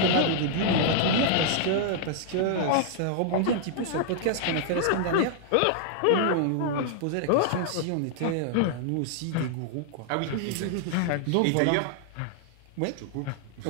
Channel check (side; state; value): both; different; correlation -0.01